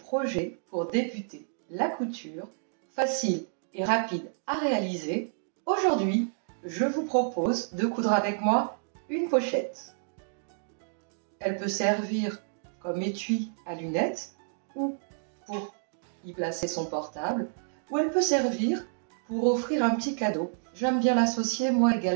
pour débuter la couture, facile et rapide à réaliser. Aujourd'hui, je vous propose de coudre avec moi une pochette. Elle peut servir comme étui à lunettes ou pour y placer son portable, ou elle peut servir pour offrir un petit cadeau. J'aime bien l'associer moi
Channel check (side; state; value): left; silent; digital silence